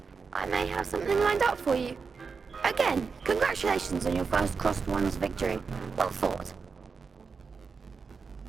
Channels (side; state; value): left; quieter; 5.2 dB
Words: I may have something lined up for you. Again, congratulations on your first crossed ones victory. Well fought.